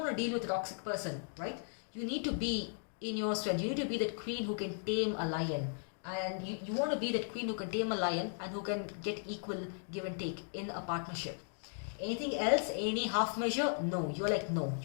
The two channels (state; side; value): silent; right; digital silence